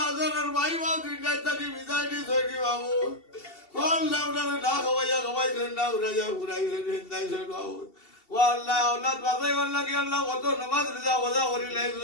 যারা ভাই বাবু দুইটাই তাকে বিদায় দিয়ে ধরি বাবু আল্লাহ ওনারে না খাওয়াইছেন না উড়াইয়া ঘুরাইছেন হিন্দাইছেন বাবু ও আল্লাহ আল্লাহ বাজাই আল্লাহ কি আল্লাহ কত নামাজ রিজা বজা করি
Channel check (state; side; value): late; right; 2.7 ms